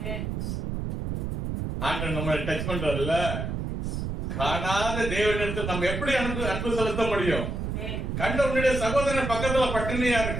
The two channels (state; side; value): noise; right; rumble, 3 dB below the sound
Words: ஆண்டவர் நம்மளை டச் பண்றதுல காணாத தேவனிடத்தில் நம்ம எப்படி அன்பு செலுத்த முடியும்? கண்ட உன்னுடைய சகோதரன் பக்கத்துல பட்டினியா